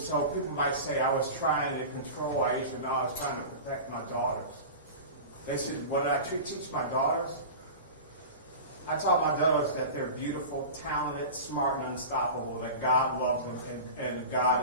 people might say I was trying to control Aisha. No, I was trying to protect my daughters. They said, what did I teach my daughters? I taught my daughters that they're beautiful, talented, smart, and unstoppable, that God loves them, and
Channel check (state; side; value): inverted; both; correlation -0.32